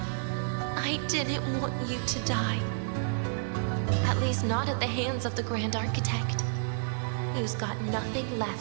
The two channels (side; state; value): left; silent; digital silence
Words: I didn't want you to die. At least not at the hands of the Grand Architect, who's got nothing